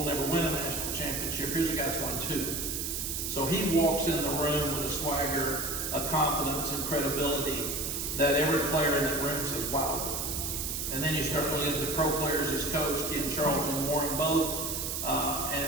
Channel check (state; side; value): noise; right; hiss, 2 dB below the sound